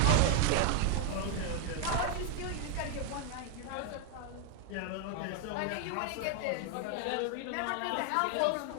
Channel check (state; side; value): different; both; correlation 0.00